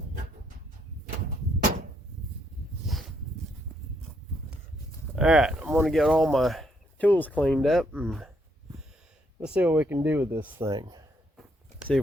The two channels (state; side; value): normal; both; correlation 0.73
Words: Alright, I'm going to get all my tools cleaned up and let's see what we can do with this thing. See